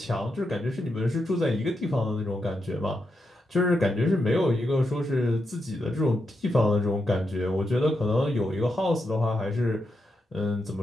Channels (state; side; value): normal; both; correlation 0.84